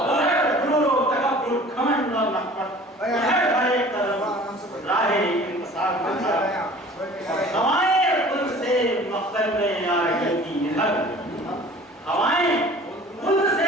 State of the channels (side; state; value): both; normal; correlation 0.46